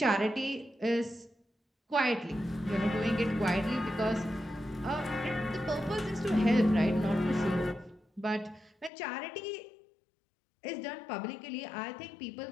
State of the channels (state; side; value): drops out; right; at 8.9 s